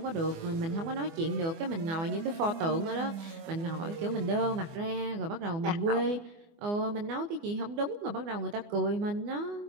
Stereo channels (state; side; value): late; left; 24 ms